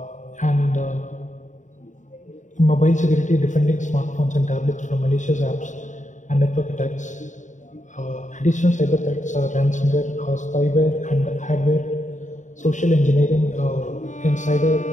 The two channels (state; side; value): late; right; 0.36 ms